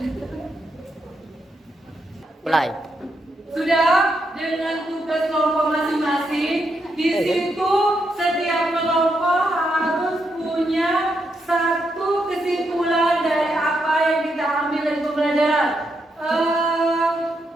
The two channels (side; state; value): both; normal; correlation 0.81